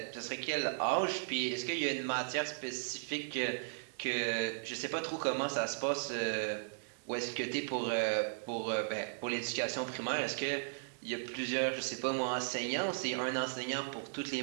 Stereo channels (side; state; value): left; silent; digital silence